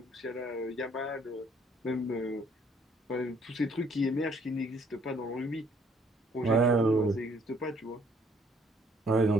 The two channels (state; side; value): normal; both; correlation 0.63